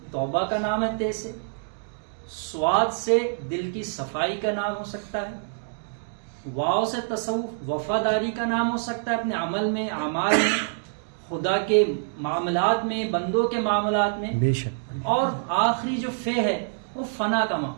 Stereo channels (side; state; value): left; silent; digital silence